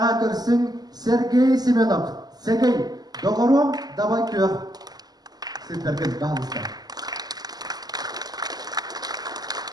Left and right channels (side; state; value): left; late; 0.19 ms